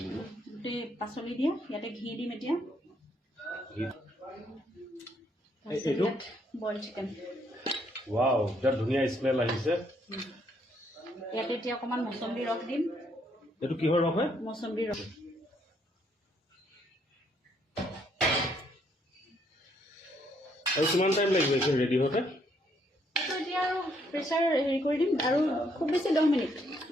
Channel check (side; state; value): both; normal; correlation 0.70